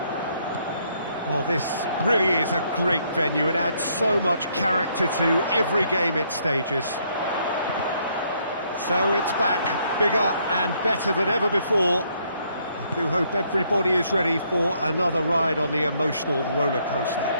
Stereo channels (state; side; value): inverted; both; correlation -0.70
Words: Well, this really is a great venue. It adds so much character to every game it stages. So it's back, bigger and better than ever before. I do hope everybody is ready for another ride on the emotional roller coaster.